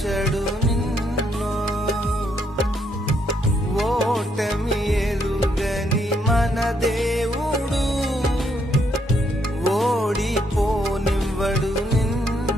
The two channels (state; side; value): normal; both; correlation 0.74